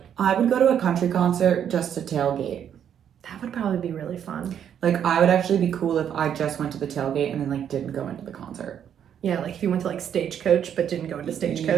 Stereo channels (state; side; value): quieter; left; 9.0 dB